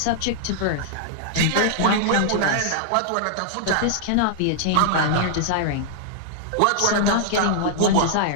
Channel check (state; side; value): different; both; correlation -0.01